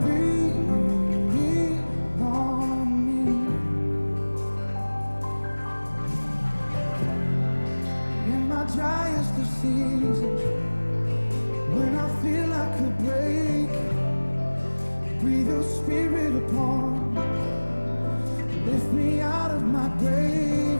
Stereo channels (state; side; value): inverted; both; correlation -1.00